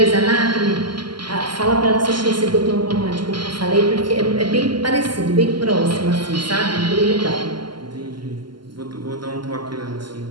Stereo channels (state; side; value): late; left; 0.71 ms